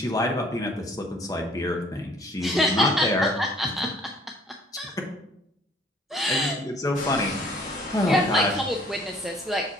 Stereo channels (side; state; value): both; normal; correlation 0.57